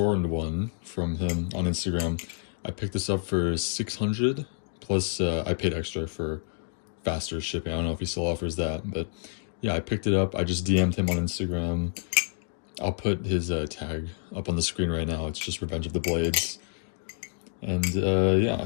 one from him on Instagram. I picked this up for 600 plus I paid extra for faster shipping. I don't know if he still offers that, but yeah, I picked it up. I just DM'd him on Instagram. I'll put his tag up on the screen right now. It's just Revenge of the Blades. And yeah,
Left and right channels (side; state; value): right; silent; digital silence